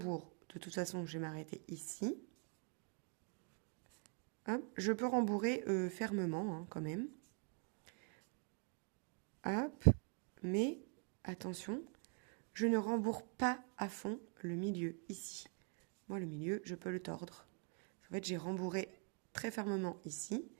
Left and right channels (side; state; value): left; quieter; 38.5 dB